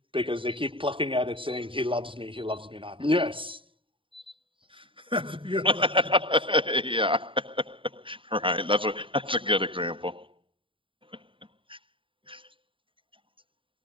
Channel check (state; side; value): late; left; 0.25 ms